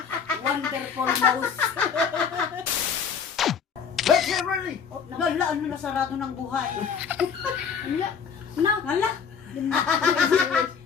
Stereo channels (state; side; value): quieter; right; 6.7 dB